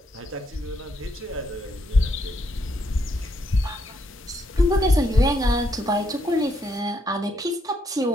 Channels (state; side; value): normal; both; correlation 0.75